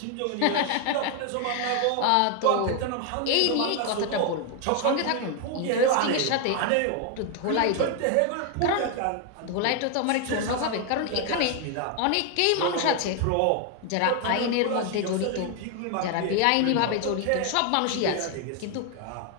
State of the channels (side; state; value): both; different; correlation 0.01